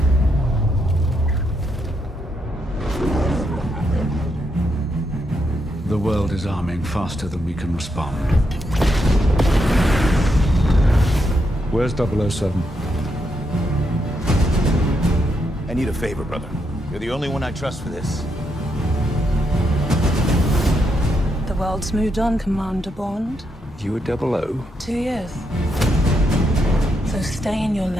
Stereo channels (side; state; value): both; normal; correlation 0.80